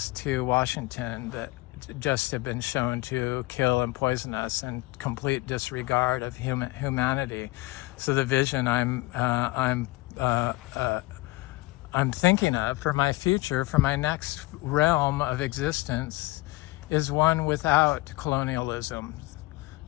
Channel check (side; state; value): right; quieter; 20.8 dB